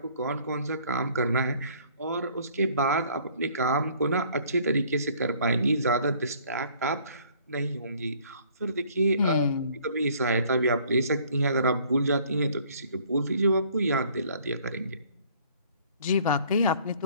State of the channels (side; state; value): both; inverted; correlation -0.58